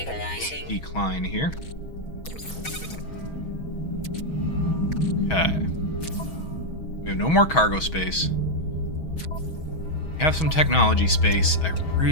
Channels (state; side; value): late; right; 6.2 ms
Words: decline here. Okay. We have no more cargo space. We have some technology space. I